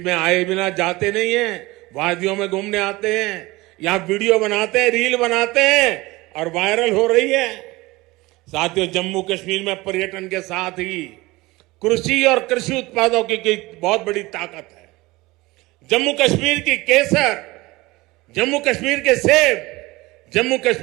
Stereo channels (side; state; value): left; quieter; 21.0 dB